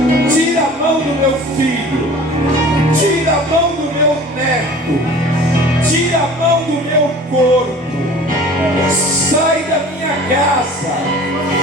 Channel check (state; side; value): normal; both; correlation 0.43